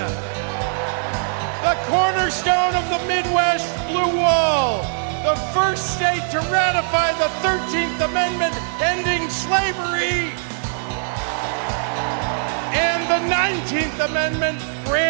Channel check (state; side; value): silent; left; 56 dB below the other